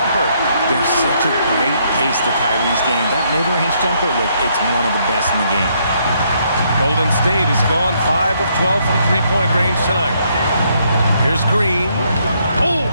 There's such a great pace to Kyrie's game. That mid-range jumper, look, it's one of the best in the game. Golden State has gone 5 of 12 from three-point range tonight. Here's Green. Oh,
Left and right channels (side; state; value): both; inverted; correlation -0.72